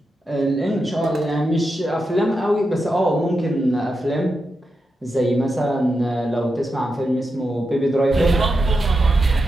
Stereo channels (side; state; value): both; normal; correlation 0.87